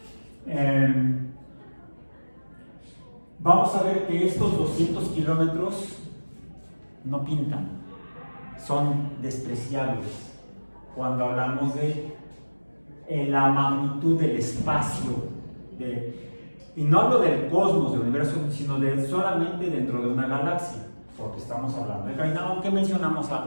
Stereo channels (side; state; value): both; inverted; correlation -1.00